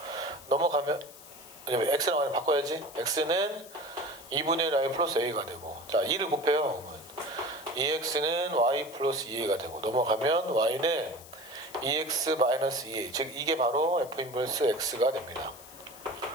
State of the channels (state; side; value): noise; left; hiss, 19 dB below the sound